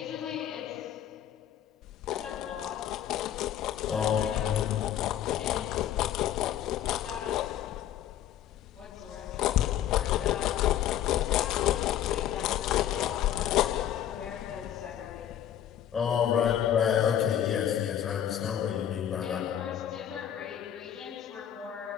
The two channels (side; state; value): right; quieter; 10.8 dB